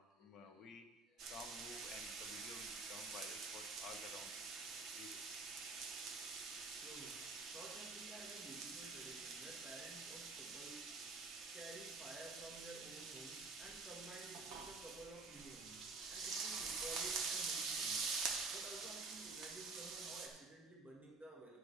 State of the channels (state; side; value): quieter; left; 4.0 dB